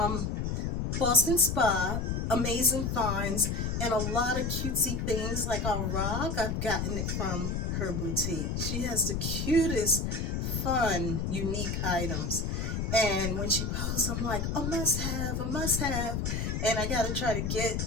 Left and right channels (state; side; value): noise; left; rumble, 1 dB below the sound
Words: Boston Spa, amazing finds, and a lot of cutesy things like a rock. I've gotten it from her boutique. She has the cutest, fun, unique items. And when she posts, I'm like, a must have, a must have. And I got to try to get,